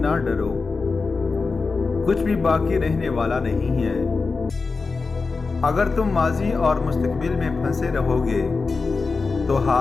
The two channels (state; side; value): quieter; right; 4.3 dB